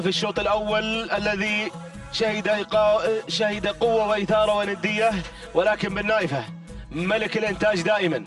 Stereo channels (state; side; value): identical; both; correlation 1.00